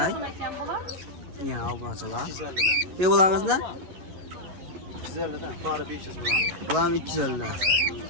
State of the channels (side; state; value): left; late; 11 ms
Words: Yana obunachilar. 250'den. Bularimiz ne? 250'den, para 500 dolar. Bular 250 dan.